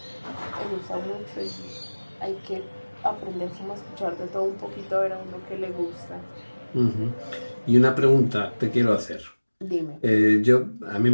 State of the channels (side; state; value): both; inverted; correlation -1.00